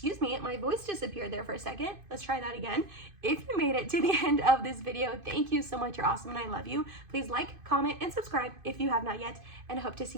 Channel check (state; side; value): late; left; 2.5 ms